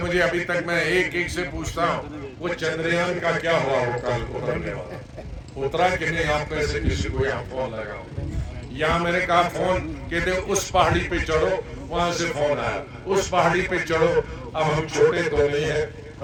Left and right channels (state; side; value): identical; both; correlation 1.00